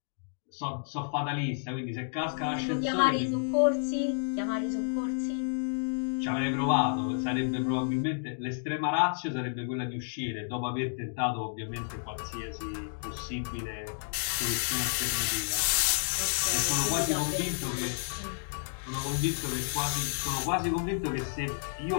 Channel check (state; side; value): silent; right; digital silence